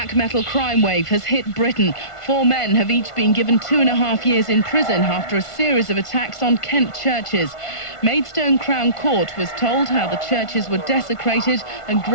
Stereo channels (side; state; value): right; late; 1.5 ms